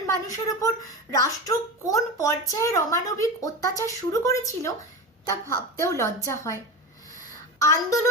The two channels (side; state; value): both; normal; correlation 0.24